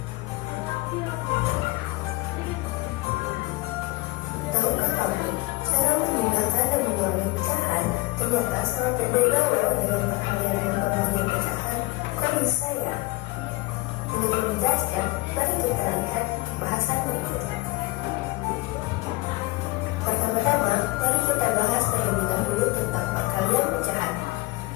Tahukah kamu, cara memindahkan dan mengulangi pecahan ternyata sangat berbeda loh dengan perkalian dan pembagian pecahan. Kok bisa ya? Untuk lebih jelasnya, mari kita lihat bahasan berikut. Pertama-tama, mari kita bahas terlebih dahulu tentang perkalian pecahan.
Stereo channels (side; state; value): right; quieter; 21.6 dB